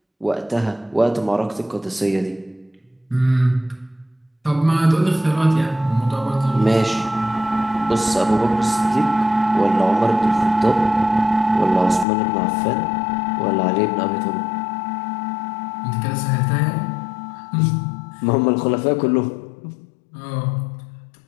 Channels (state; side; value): drops out; right; at 12.1 s